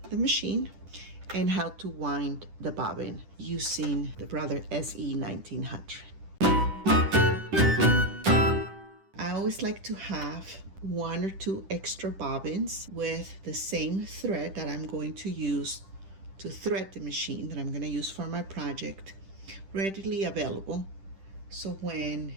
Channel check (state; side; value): late; left; 10 ms